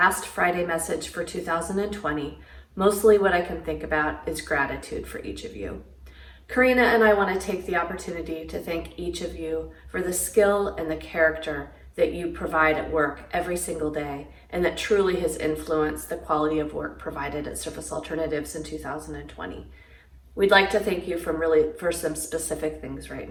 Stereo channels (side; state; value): both; identical; correlation 1.00